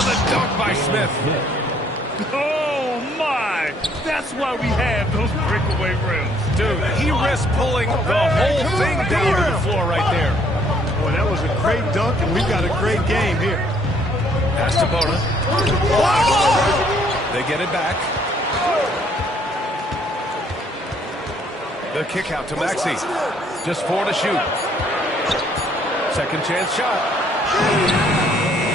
the dunk by Smith. Oh, my. That's why we have those breakaway rims. Dude, he risked pulling the whole thing down to the floor right there. Boy, that was a great dunk, and we've got a great game here. Pass to Bona. They get it back. The kick out to Maxey. Just 4 to shoot. Second chance shot.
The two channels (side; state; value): both; normal; correlation 0.64